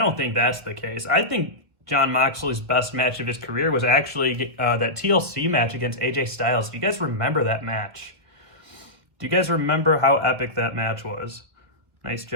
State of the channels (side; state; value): left; late; 1.8 ms